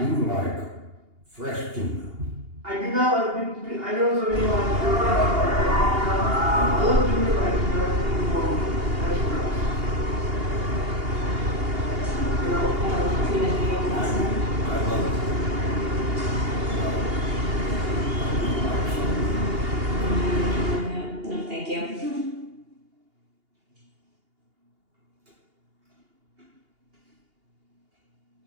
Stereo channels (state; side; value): late; left; 2.8 ms